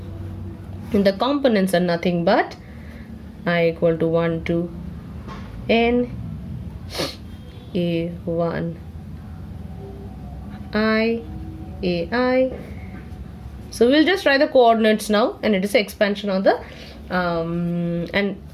and the components are nothing but I equal to 1 to N A1 I AI. So we'll just write the coordinates now, and it is an expansion of the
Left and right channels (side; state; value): both; identical; correlation 1.00